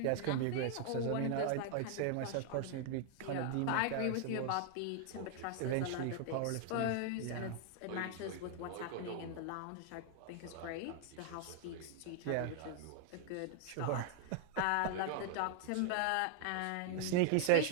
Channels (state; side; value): different; both; correlation -0.01